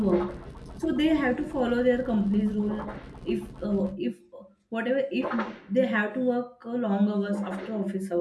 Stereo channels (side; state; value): both; identical; correlation 1.00